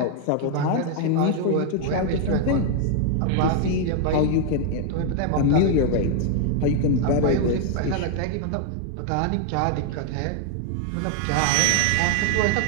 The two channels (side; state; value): both; different; correlation 0.00